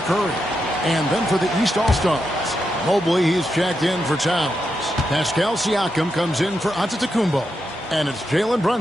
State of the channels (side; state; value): both; normal; correlation 0.85